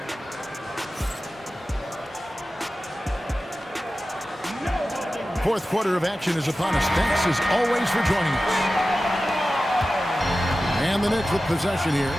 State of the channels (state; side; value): normal; both; correlation 0.95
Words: Fourth quarter of action is upon us. Thanks as always for joining us. And the Knicks with possession here.